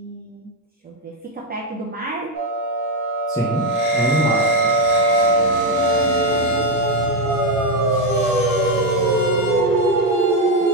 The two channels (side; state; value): both; normal; correlation 0.05